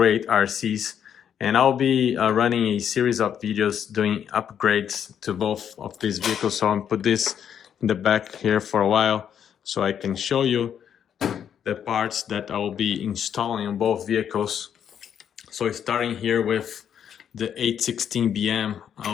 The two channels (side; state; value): right; quieter; 8.8 dB